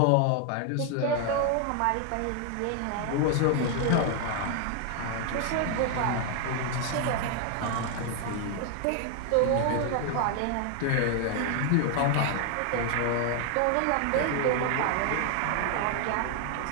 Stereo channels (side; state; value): both; different; correlation 0.00